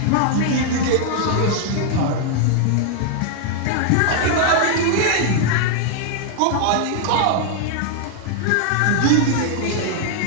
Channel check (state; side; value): different; both; correlation 0.00